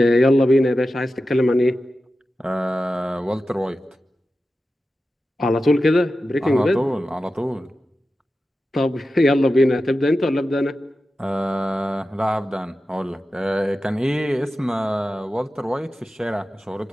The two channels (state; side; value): normal; both; correlation 0.93